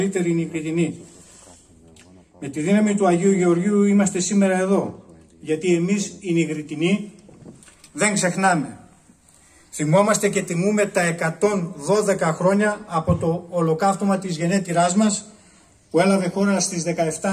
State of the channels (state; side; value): identical; both; correlation 1.00